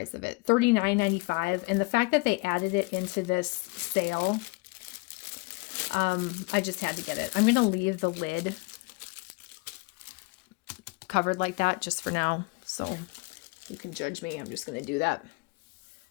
of it? $39.95. And the fact that they added it into this sale, I just had to get it. I'm going to leave the lid covered like that just for now. So you can judge me. I'm just going to do that.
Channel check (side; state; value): right; quieter; 27.1 dB